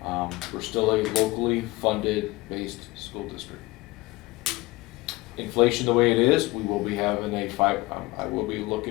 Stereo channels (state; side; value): quieter; right; 21.3 dB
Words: We're still a locally funded based school district. Inflation the way it is, we will be having I will be